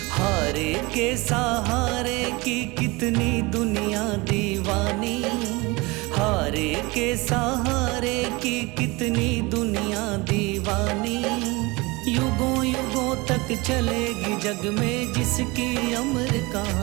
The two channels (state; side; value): quieter; left; 24.2 dB